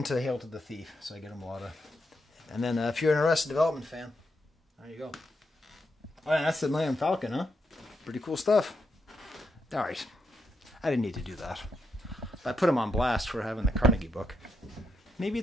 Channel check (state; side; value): normal; both; correlation 0.83